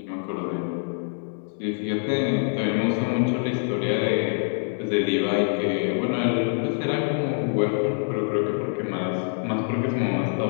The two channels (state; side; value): silent; right; digital silence